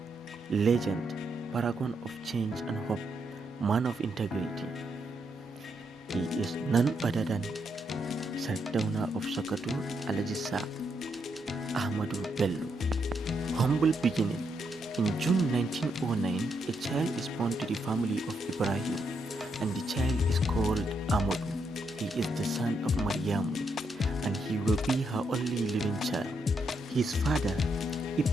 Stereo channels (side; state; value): both; normal; correlation 0.79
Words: legend, paragon of change and hope, man of integrity. He is none other than Sardauna of Sokoto, Alhaji Ahmadu Bello. Humble beginning. In June 1909, a child is born to the family of Ibrahim, and the child is called Ahmadu. He is the son of Maryamu, and he will be her only living child. His father,